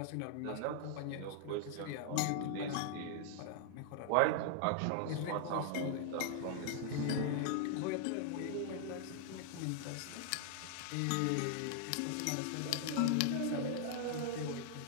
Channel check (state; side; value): different; both; correlation 0.00